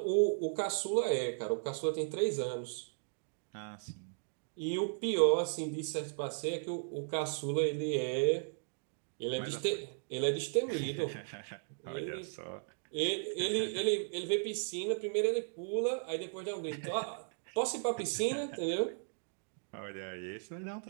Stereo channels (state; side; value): silent; left; digital silence